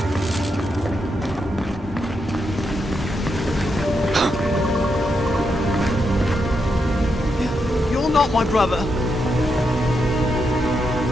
You're not my brother.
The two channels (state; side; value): normal; both; correlation 0.83